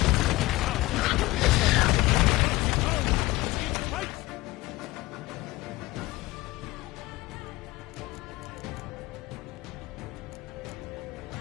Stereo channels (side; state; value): right; quieter; 19.7 dB